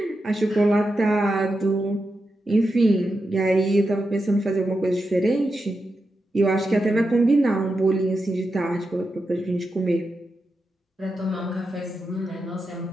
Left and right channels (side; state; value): both; normal; correlation 0.88